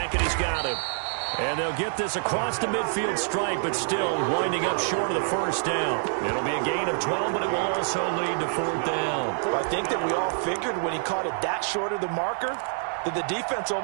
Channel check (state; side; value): silent; left; digital silence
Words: and he's got him. And they'll get this across the midfield stripe, but still winding up short of the first down. It'll be a gain of 12, but it will also lead to 4th down. Well, I think that we all figured when he caught it that short of the marker that the defense